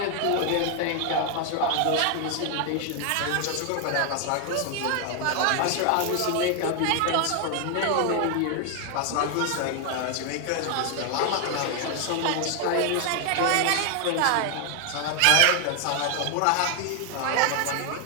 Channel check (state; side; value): different; both; correlation 0.00